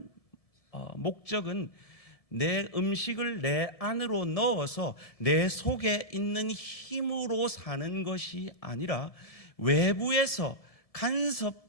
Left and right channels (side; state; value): right; late; 1.7 ms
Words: 목적은 내 음식을 내 안으로 넣어서 내 속에 있는 힘으로 사는 것이 아니라 외부에서